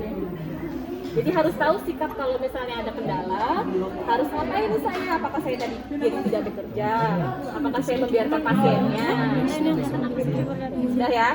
Jadi harus tahu sikap kalau misalnya ada kendala, harus ngapain nih saya? Apakah saya tadi jadi tidak bekerja? Apakah saya membiarkan pasiennya? Sudah ya,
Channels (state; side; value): identical; both; correlation 1.00